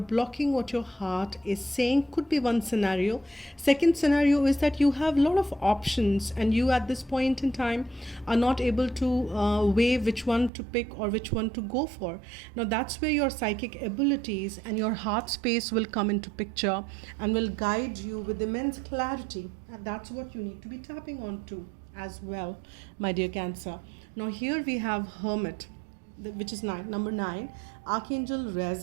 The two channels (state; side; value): drops out; left; at 10.5 s